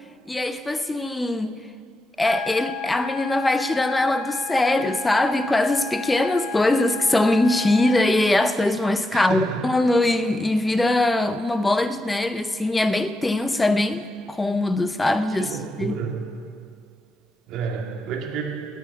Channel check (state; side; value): normal; both; correlation 0.87